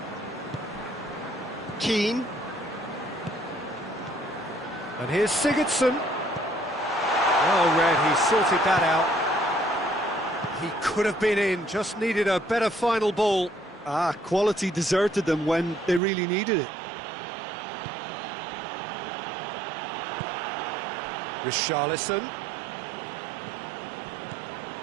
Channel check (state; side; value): drops out; left; at 16.0 s